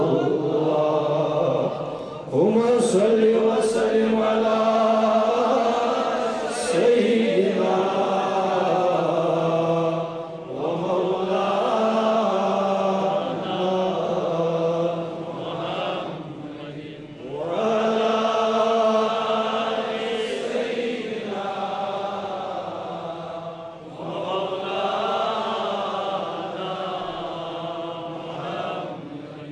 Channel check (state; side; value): identical; both; correlation 1.00